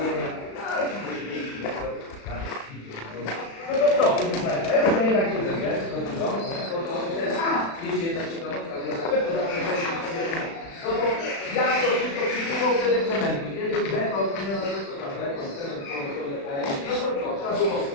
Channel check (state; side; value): late; right; 36 ms